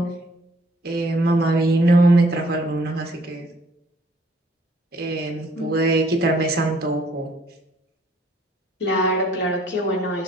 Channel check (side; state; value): both; normal; correlation 0.62